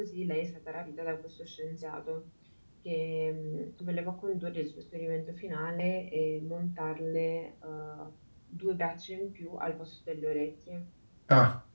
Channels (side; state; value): both; inverted; correlation -1.00